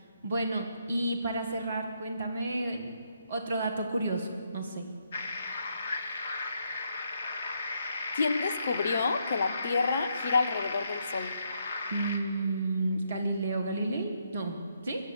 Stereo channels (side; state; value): both; inverted; correlation -0.76